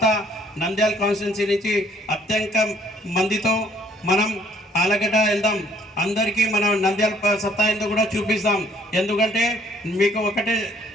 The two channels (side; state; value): both; normal; correlation 0.61